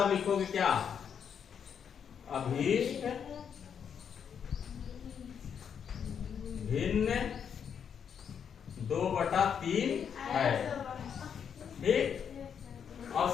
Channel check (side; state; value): right; quieter; 7.6 dB